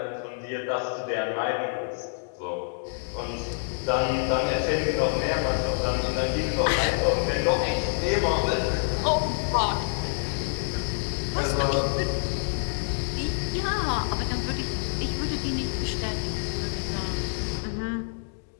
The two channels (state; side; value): silent; right; digital silence